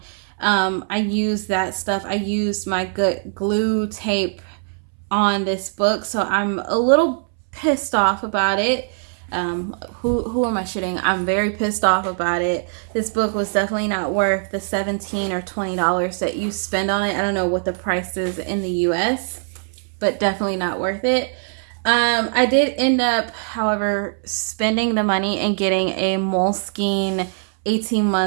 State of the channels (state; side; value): silent; left; 63 dB below the other